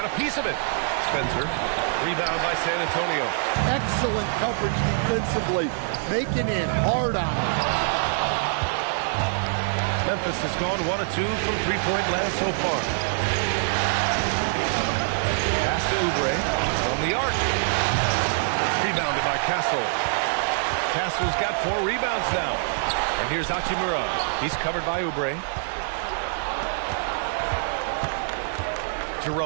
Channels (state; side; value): silent; left; digital silence